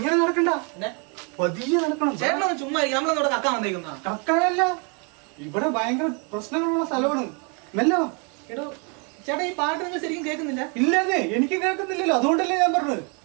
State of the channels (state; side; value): quieter; left; 35.2 dB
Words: നടക്കണ്ട, പതിയെ നടക്കണം. ചേട്ടനൊന്ന് ചുമ്മാ നമ്മളെന്നോട് കക്കാൻ വന്നേക്കുന്ന? കക്കാനല്ല, ഇവിടെ ഭയങ്കര പ്രശ്നങ്ങളുള്ള സ്ഥലമാണ്. മെല്ലെ വാ. എടോ ചേട്ടാ, ഈ പാട്ട് നിങ്ങൾ ശരിക്കും കേൾക്കുന്നില്ല? ഇല്ലേ, എനിക്ക് കേൾക്കുന്നില്ലല്ലോ. അതുകൊണ്ടല്ലേ ഞാൻ പറഞ്ഞത്.